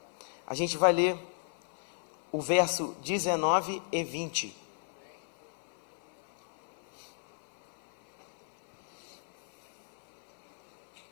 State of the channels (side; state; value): right; silent; 55 dB below the other